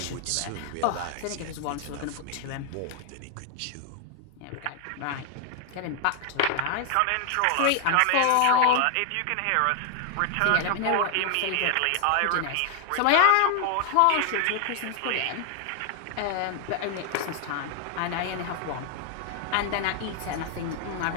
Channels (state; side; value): different; both; correlation 0.00